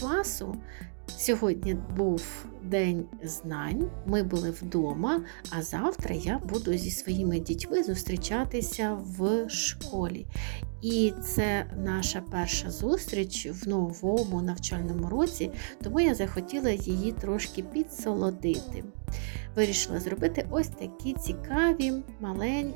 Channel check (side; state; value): left; silent; digital silence